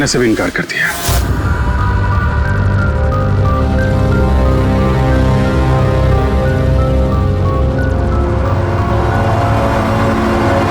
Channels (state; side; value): identical; both; correlation 1.00